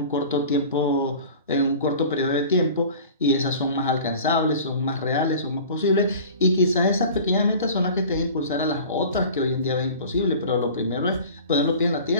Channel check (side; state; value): both; inverted; correlation -0.41